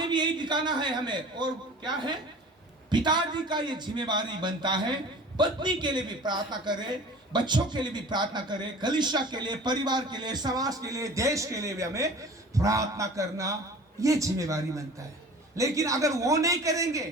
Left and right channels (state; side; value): normal; both; correlation 0.42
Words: भी यही दिखाना है हमें। और क्या है? पिताजी का ये जिम्मेवारी बनता है, पत्नी के लिए भी प्रार्थना करे, बच्चों के लिए भी प्रार्थना करे, कलीसिया के लिए, परिवार के लिए, समाज के लिए, देश के लिए भी हमें प्रार्थना करना ये जिम्मेवारी बनता है। लेकिन अगर वो नहीं करेंगे